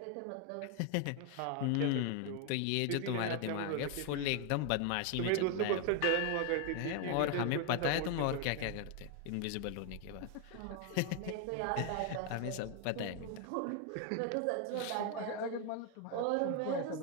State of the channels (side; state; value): both; different; correlation 0.01